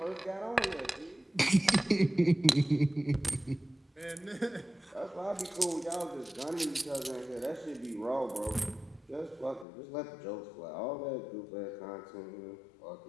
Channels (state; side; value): drops out; right; at 9.7 s